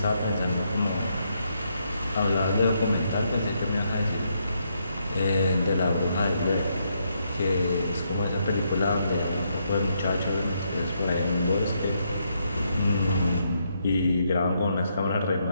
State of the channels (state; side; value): inverted; both; correlation -0.77